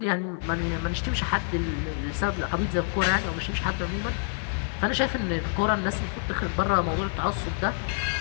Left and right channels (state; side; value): silent; right; digital silence